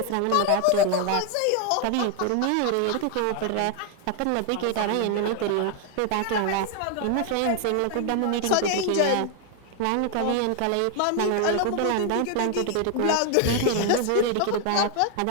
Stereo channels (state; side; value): different; both; correlation 0.00